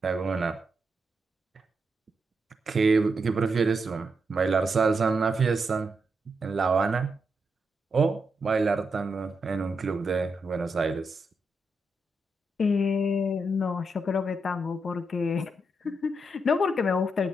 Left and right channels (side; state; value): both; normal; correlation 0.83